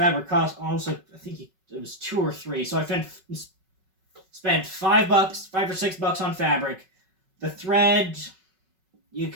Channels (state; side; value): late; left; 5.4 ms